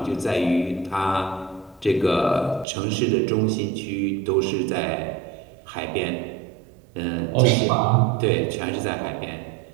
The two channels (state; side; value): drops out; left; at 2.7 s